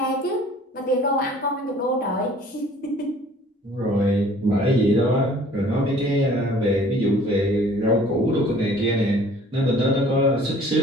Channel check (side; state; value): both; normal; correlation 0.52